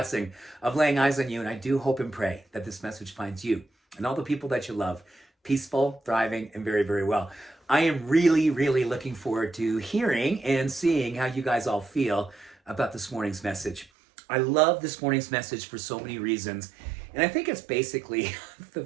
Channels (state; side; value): drops out; left; at 13.9 s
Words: of laying eyes on you. And I do hope and pray that this message finds you and all the people that you love peaceful, thriving, and very, very well. I am really, really looking forward to hearing and seeing how you guys all feel about this morning's message. I love this morning's message for so many reasons. And I think it's basically, the